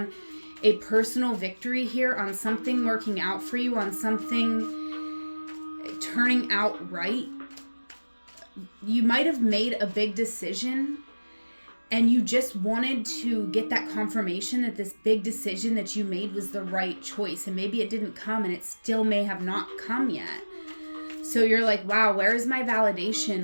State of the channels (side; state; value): both; inverted; correlation -1.00